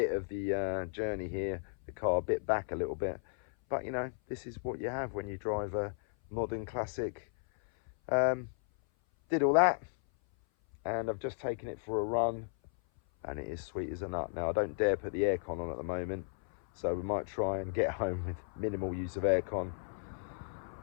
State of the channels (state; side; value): silent; right; 55 dB below the other